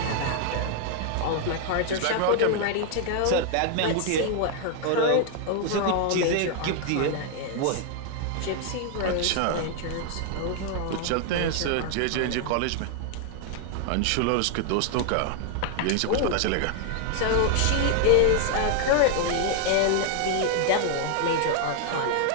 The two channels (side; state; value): both; different; correlation 0.00